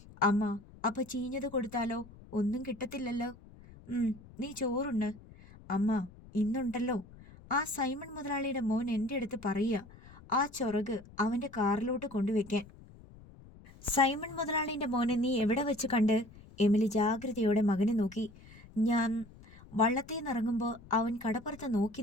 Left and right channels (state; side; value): noise; left; rumble, 21 dB below the sound